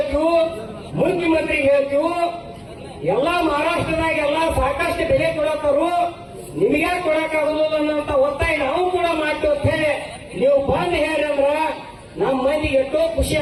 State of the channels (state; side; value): identical; both; correlation 1.00